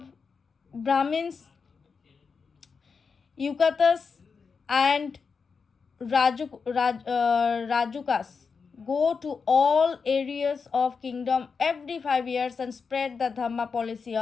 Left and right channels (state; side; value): quieter; right; 5.3 dB